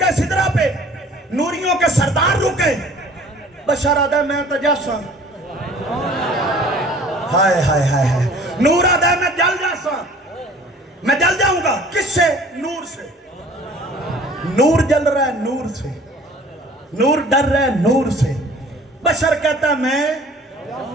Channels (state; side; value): normal; both; correlation 0.50